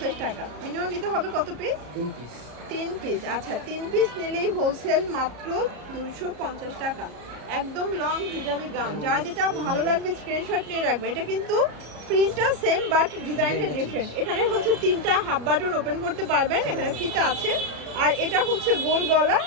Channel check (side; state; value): left; late; 34 ms